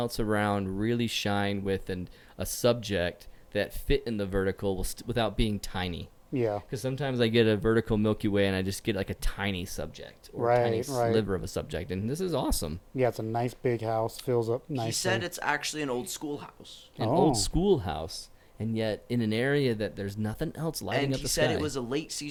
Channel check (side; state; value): both; identical; correlation 1.00